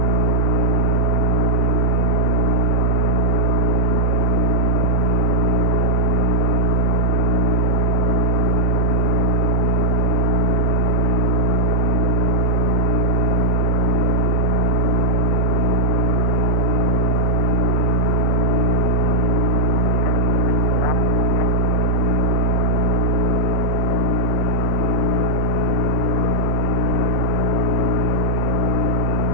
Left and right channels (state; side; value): normal; both; correlation -0.03